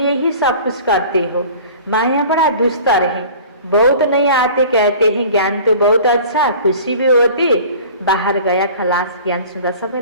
ही सब कुछ करते हो। माया बड़ा दुस्तर है, बहुत नहीं आते कहते हैं ज्ञान तो बहुत अच्छा, खुशी भी होती, बाहर गया खलास। ज्ञान सुन्दा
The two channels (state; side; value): inverted; both; correlation -0.44